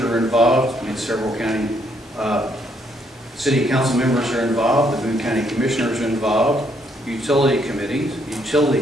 are involved, I mean several county city council members are involved, the Boone County commissioners are involved, utility committees,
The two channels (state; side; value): normal; both; correlation 0.71